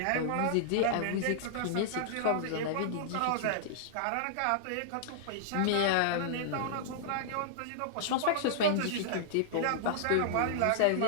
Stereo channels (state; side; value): different; both; correlation -0.01